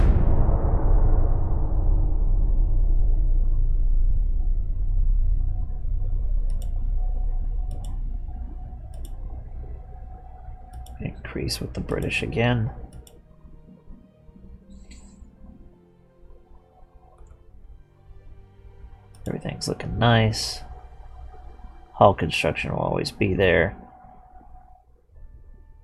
Increase with the British again. Everything's looking nice. Hull construction will always be there.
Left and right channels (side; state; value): both; identical; correlation 1.00